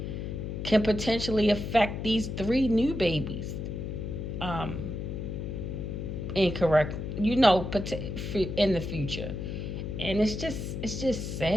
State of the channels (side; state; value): left; noise; hum, 5 dB below the sound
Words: can potentially affect these three new babies. um, incorrect, in the future. And it's just